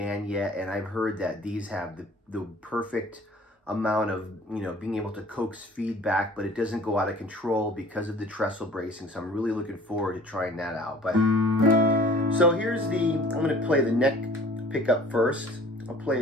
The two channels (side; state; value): both; normal; correlation 0.49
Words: yet, and I've heard that these have the perfect amount of, you know, being able to coax feedback, but it doesn't go out of control because of the trestle bracing. So I'm really looking forward to trying that out. But so here's I'm going to play the neck pickup first. I'll play